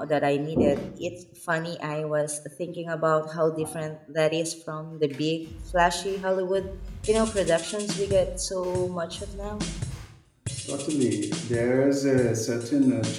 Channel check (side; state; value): both; identical; correlation 1.00